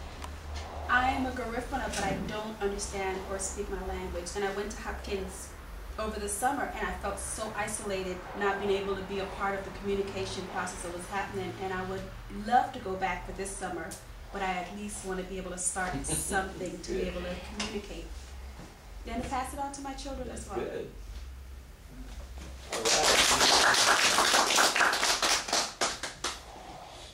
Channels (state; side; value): identical; both; correlation 1.00